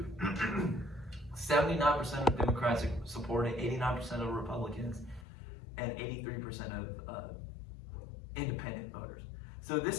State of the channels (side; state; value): right; drops out; at 5.2 s